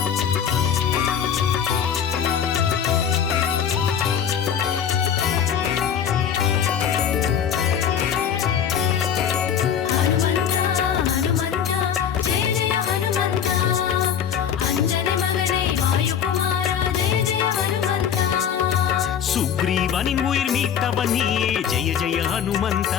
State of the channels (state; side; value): quieter; right; 8.4 dB